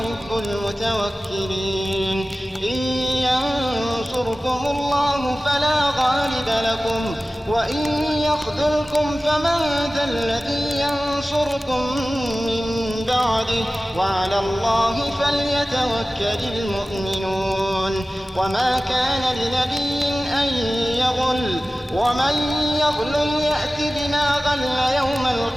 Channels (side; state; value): both; normal; correlation 0.96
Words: المتوكلين إن ينصركم الله فلا غالب لكم وإن يخذلكم فمن ذا الذي ينصركم من بعده وعلى الله فليتوكل المؤمنون وما كان لنبي أن يغل ومن يغل يأت بما غل يوم